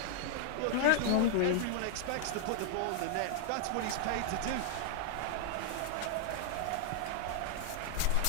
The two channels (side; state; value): both; different; correlation -0.01